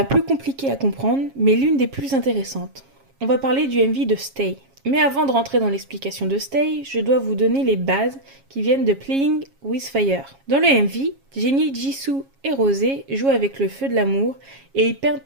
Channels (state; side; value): late; left; 7.3 ms